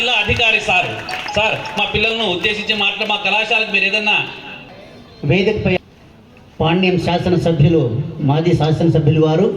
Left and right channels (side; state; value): both; identical; correlation 1.00